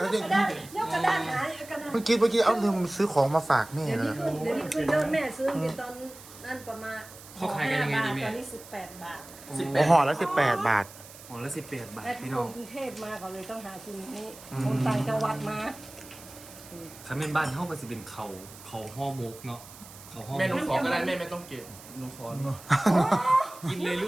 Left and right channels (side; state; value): right; noise; hiss, 18 dB below the sound